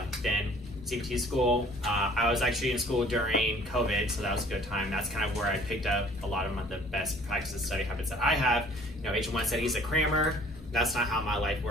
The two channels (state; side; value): normal; both; correlation 0.54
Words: Then CBT school. I was actually in school during COVID, so that was a good time. That's kind of where I picked up a lot of the best practices, study habits that I have. H1 said he's a crammer. That's not how my life